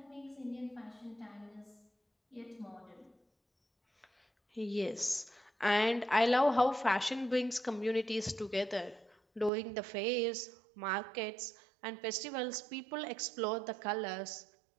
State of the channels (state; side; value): drops out; left; at 9.5 s